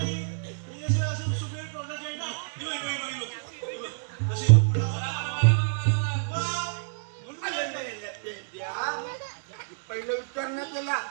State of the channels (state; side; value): silent; left; digital silence